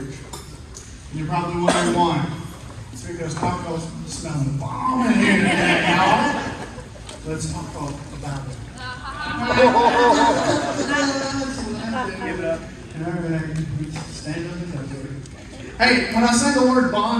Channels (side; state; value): both; identical; correlation 1.00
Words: And you're probably wondering why. It's because Taco's smelling the bomb in here today, y'all. Let's talk about it. Give it up. Stand up and touch it. Hey, when I say the word